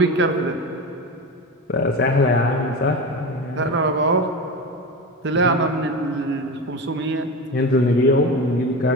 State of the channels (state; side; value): normal; both; correlation 0.25